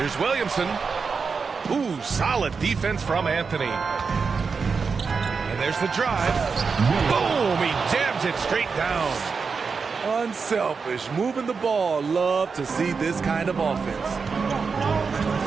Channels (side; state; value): left; quieter; 5.2 dB